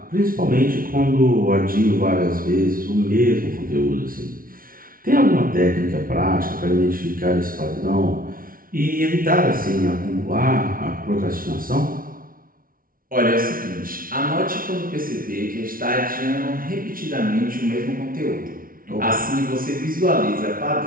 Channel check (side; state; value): left; late; 0.42 ms